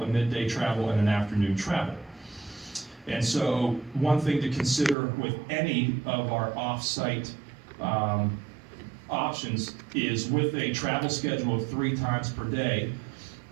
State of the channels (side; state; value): left; drops out; at 5.0 s